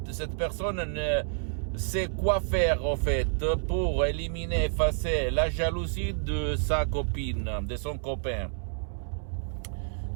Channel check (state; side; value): silent; left; 59 dB below the other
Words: cette personne ne sait quoi faire en fait pour éliminer, effacer la jalousie de sa copine, de son copain.